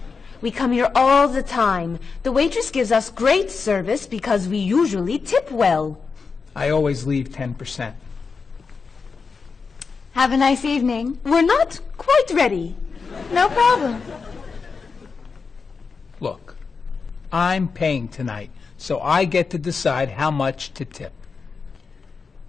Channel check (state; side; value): quieter; right; 5.0 dB